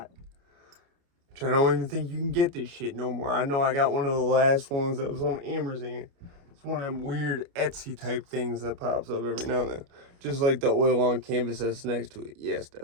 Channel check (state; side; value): late; left; 29 ms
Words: Which I don't even think you can get this shit no more. I know I got one of the last ones that was on Amazon. It's one of them weird Etsy type things that pops up every now and then. Just like the oil on canvas that's next to it. Yes,